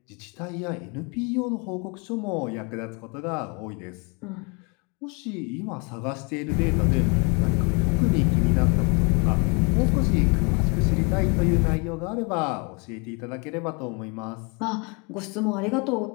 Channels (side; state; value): right; quieter; 32.2 dB